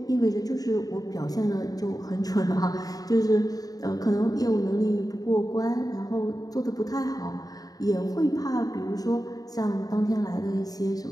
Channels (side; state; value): right; late; 0.18 ms